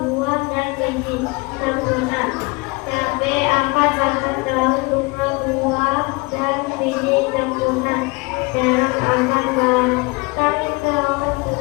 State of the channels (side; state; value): right; quieter; 27.0 dB